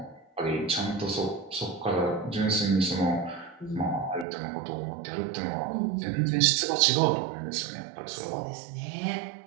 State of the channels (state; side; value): drops out; left; at 4.2 s